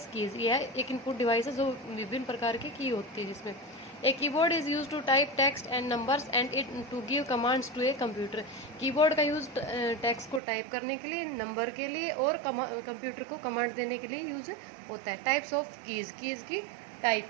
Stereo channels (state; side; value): drops out; left; at 10.4 s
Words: keys. यह एक इनपुट डिवाइस है जो विभिन्न प्रकार की की होती है, जिसमें a keyboard is use to type text and numbers and it to give commands to a computer. Keyboard का यूज टेक्स्ट को टाइप करने के लिए, नंबर के लिए और कंप्यूटर को कमांड देने के लिए यूज होता है। टाइप्स ऑफ कीज की टाइप,